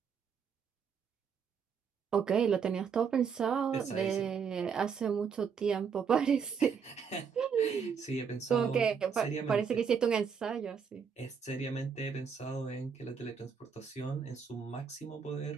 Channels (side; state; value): left; quieter; 6.5 dB